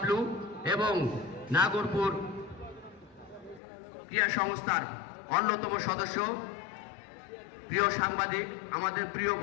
এবং নাগরপুর ক্রীড়া সংস্থার অন্যতম সদস্য প্রিয় সাংবাদিক আমাদের প্রিয়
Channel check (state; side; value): drops out; right; at 3.6 s